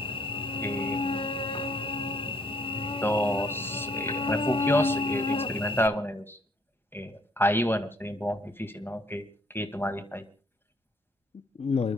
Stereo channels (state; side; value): normal; both; correlation 0.64